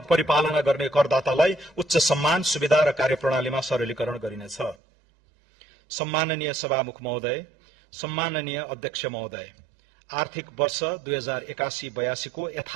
परिपालना गर्ने करदातालाई उच्च सम्मान, सुविधा र कार्यप्रणालीमा सरलीकरण गरिनेछ। सम्माननीय सभामुख महोदय, सम्माननीय अध्यक्ष महोदय, आर्थिक वर्ष 2081-82 को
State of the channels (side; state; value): left; drops out; at 4.8 s